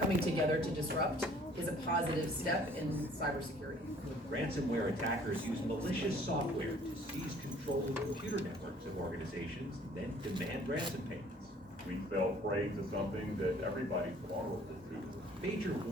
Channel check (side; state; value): both; normal; correlation 0.55